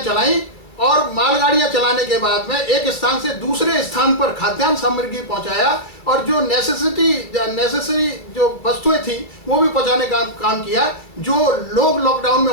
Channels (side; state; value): right; late; 2.3 ms